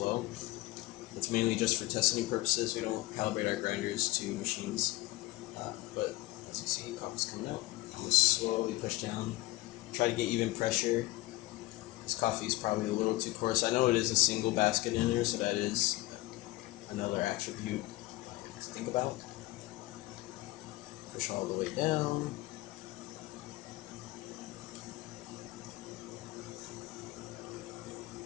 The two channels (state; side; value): quieter; right; 19.1 dB